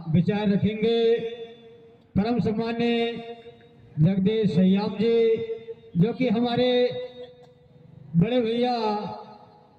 विचार रखेंगे। परम सम्मान्य जगदीश श्याम जी जो कि हमारे बड़े भैया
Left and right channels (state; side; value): identical; both; correlation 1.00